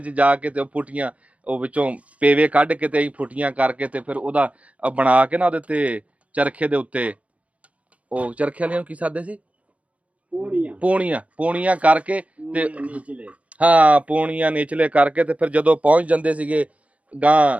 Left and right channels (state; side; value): late; left; 0.066 ms